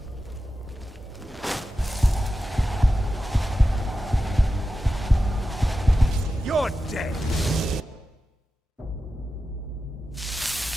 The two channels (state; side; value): normal; both; correlation 0.92